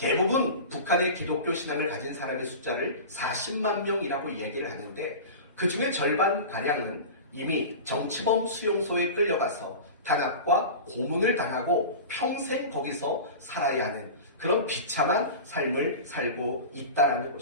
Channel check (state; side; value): inverted; both; correlation -0.31